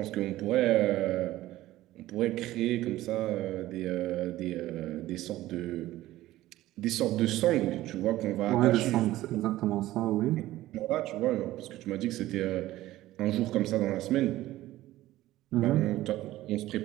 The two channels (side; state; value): left; quieter; 15.7 dB